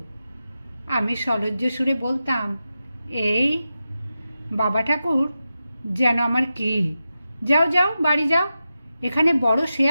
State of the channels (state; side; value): inverted; both; correlation -0.91